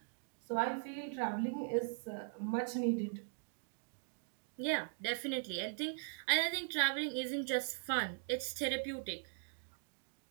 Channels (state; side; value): silent; left; digital silence